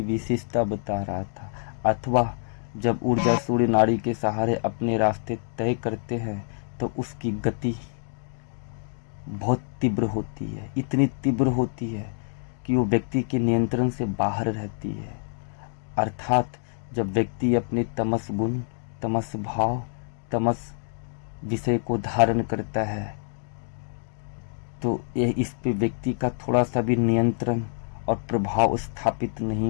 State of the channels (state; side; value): silent; right; digital silence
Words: विशेषता बता रहा था, अथवा जब ऊर्जा सूर्य नाड़ी के सहारे अपने रास्ते तय करते हैं तो उसकी गति बहुत तीव्र होती है, इतनी तीव्र होती है कि वो व्यक्ति के नियंत्रण से बाहर रहती है। अर्थात जब व्यक्ति अपने तमस गुण, तमस भाव, तमस विषय को धारण करता है तो यह इस पे व्यक्ति का थोड़ा सा भी नियंत्रण और प्रभाव स्थापित